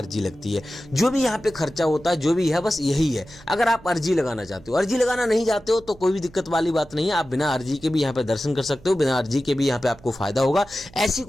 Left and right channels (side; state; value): right; noise; hum, 23 dB below the sound